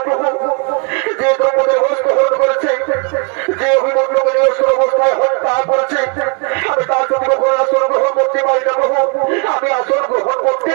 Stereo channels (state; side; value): quieter; left; 33.6 dB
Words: প্রভু। যে দ্রৌপদীর বস্ত্র হরণ করেছে, যে অভিমন্যকে নিরস্ত্র অবস্থায় হত্যা করেছে, আমি তার প্রতি কখনো আসন গ্রহণ করতে পারি না প্রভু। আমি আসন গ্রহণ করতে